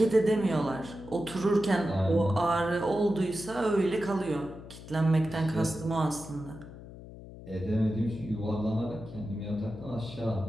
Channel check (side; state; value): left; noise; hum, 15 dB below the sound